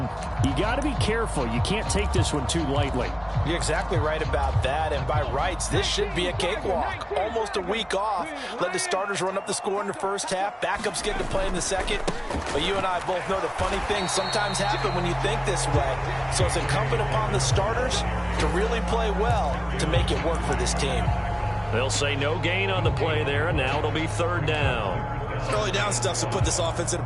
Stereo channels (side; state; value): both; identical; correlation 1.00